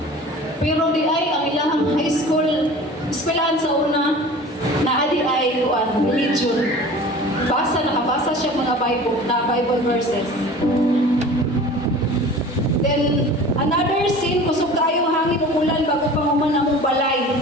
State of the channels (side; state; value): both; normal; correlation 0.41